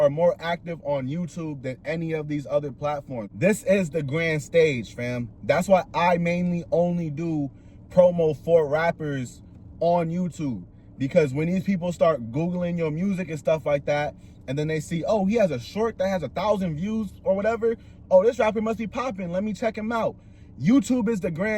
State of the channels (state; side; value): identical; both; correlation 1.00